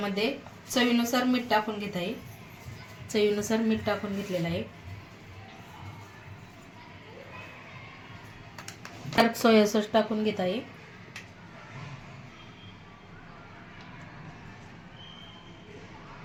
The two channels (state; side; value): identical; both; correlation 1.00